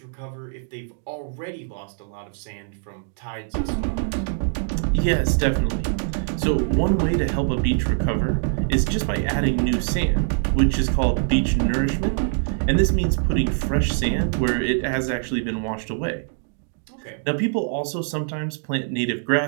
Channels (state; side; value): silent; left; digital silence